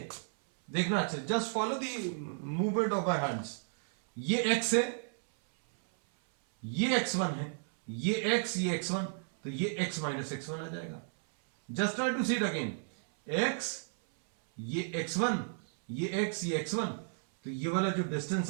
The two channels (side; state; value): left; silent; 56 dB below the other